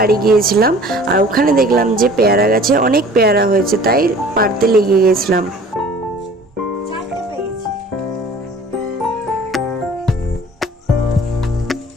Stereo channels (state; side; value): normal; both; correlation 0.48